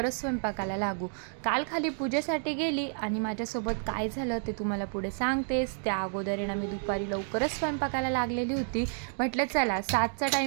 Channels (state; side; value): silent; left; 58 dB below the other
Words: स्वयंपाकाला लागू. काल खाली पूजेसाठी गेली आणि माझ्यासोबत काय झालं ते तुम्हाला पुढे सांगतेच. त्या अगोदर आहे ना मी दुपारी लवकरच स्वयंपाकाला लागलेली होती. म्हटलं चला 7चा